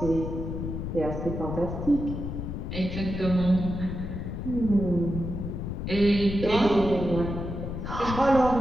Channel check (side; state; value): left; noise; rumble, 5 dB below the sound